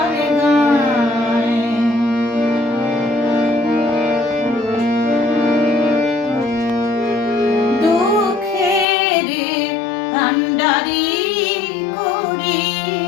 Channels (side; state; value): right; drops out; at 8.8 s